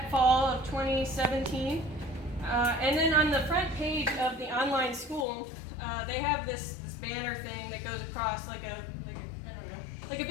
fall of 2017, and then on the front page of the online school, they have this banner thing that goes across like a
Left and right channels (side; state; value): right; drops out; at 5.2 s